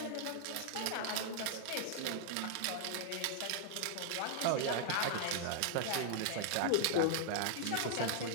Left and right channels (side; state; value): both; different; correlation -0.01